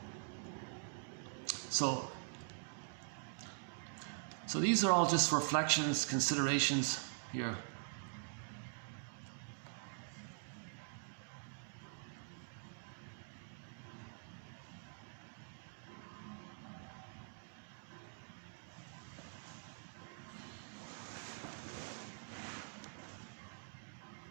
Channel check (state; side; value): silent; left; digital silence